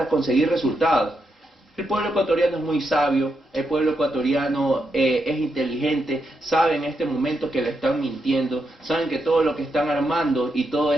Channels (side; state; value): both; normal; correlation 0.83